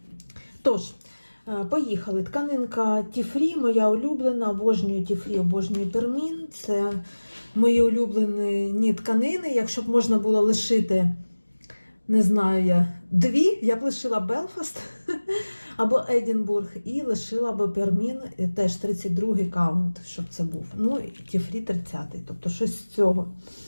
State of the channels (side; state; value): both; inverted; correlation -1.00